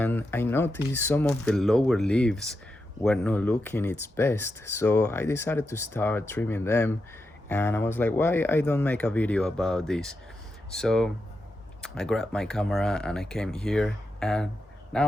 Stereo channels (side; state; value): both; normal; correlation 0.87